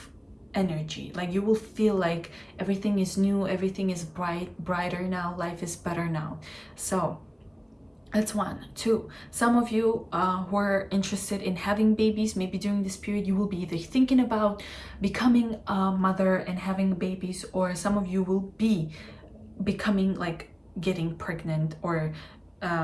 energy. Like you will feel like everything is new, everything is brighter now, life is better now. So that's 1. 2, some of you who are interested in having babies, maybe during this period you will be either thinking about becoming a mother and having babies, or some of you will be becoming, like, getting pregnant or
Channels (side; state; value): both; identical; correlation 1.00